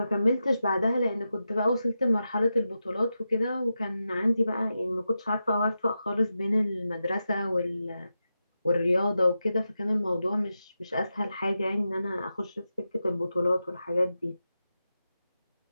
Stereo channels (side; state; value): both; inverted; correlation -0.90